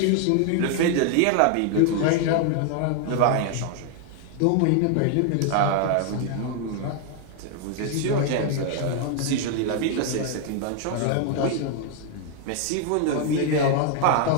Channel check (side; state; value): both; different; correlation 0.00